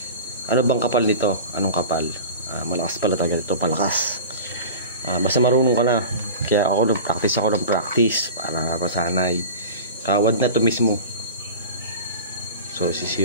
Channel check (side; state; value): both; inverted; correlation -0.35